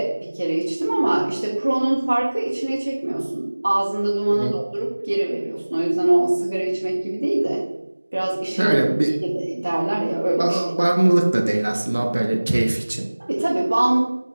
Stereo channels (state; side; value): inverted; both; correlation -1.00